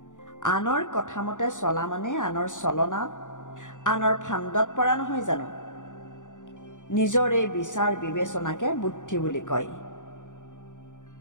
আনৰ কথামতে চলা মানে আনৰ চলনাত, আনৰ ফান্দত পৰা নহয় জানো? নিজৰ এই বিচাৰ বিবেচনাকে বুদ্ধি বুলি কয়।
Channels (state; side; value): late; right; 0.86 ms